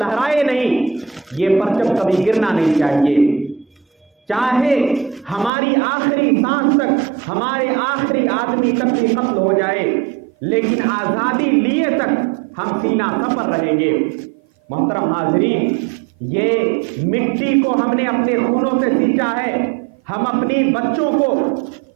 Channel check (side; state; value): left; drops out; at 5.5 s